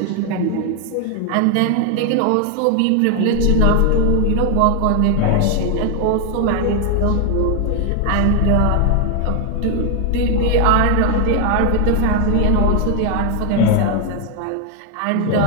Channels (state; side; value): different; both; correlation 0.01